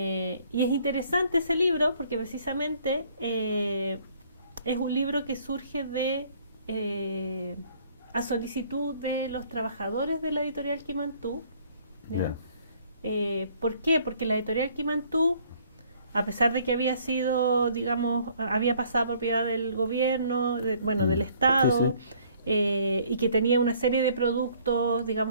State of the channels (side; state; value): both; inverted; correlation -0.60